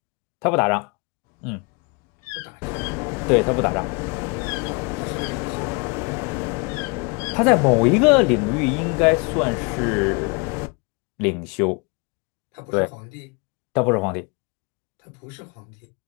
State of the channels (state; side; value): quieter; right; 31.3 dB